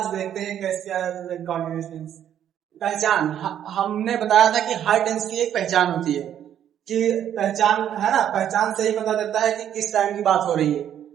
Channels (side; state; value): left; quieter; 10.1 dB